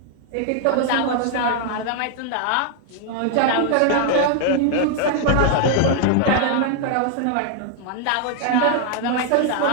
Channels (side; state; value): both; different; correlation 0.00